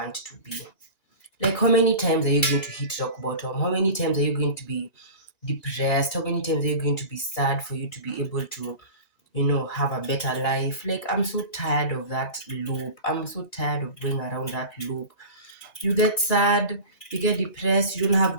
to be. Like, how many times are you going to hit rock bottom? How many times are you going to be depressed? How many times are you going to be sad for you to be able to, have a better life? Like, I'm so tired of that loop. I'm so tired of going around that loop. You get sad, you get depressed, you don't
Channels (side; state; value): right; late; 1.9 ms